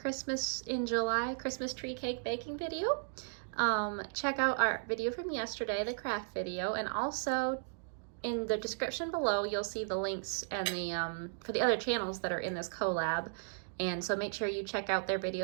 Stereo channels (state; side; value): silent; left; digital silence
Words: in July Christmas tree cake baking video. Check out our video from yesterday, the craft video, and also in the description below, you'll see the links and the for the other channels that are in this collab. And so make sure you check out their